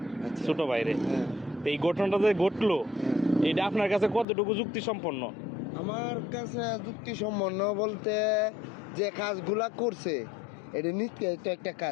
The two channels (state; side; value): drops out; right; at 4.2 s